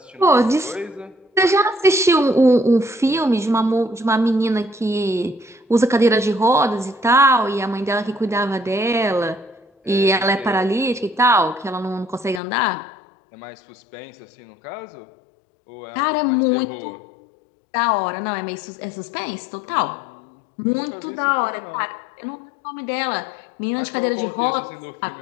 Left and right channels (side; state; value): right; drops out; at 12.4 s